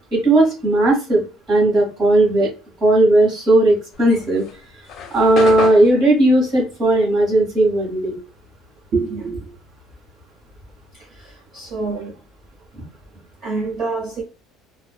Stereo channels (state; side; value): normal; both; correlation 0.76